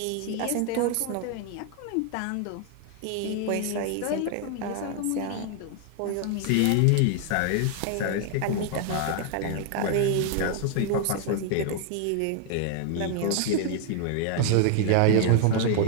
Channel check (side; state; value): both; different; correlation 0.00